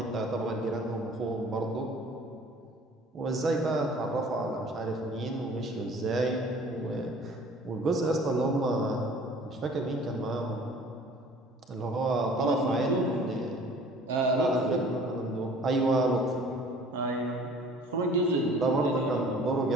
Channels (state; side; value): normal; both; correlation 0.50